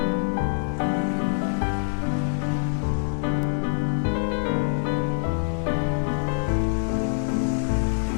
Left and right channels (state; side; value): silent; right; digital silence